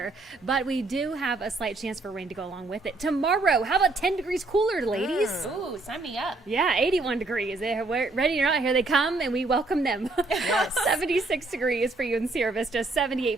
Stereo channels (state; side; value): quieter; left; 3.2 dB